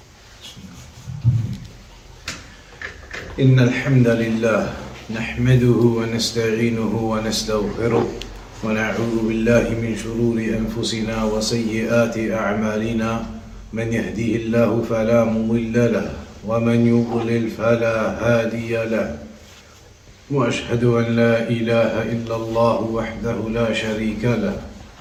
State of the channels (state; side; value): identical; both; correlation 1.00